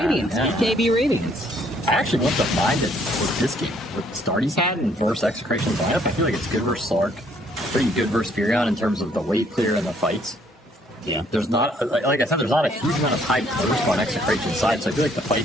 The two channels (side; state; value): both; normal; correlation 0.65